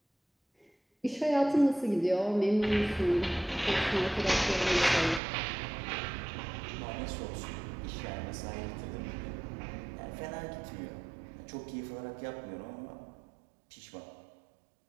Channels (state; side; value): drops out; left; at 5.2 s